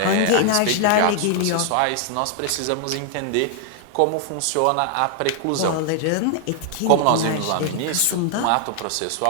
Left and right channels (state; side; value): different; both; correlation 0.00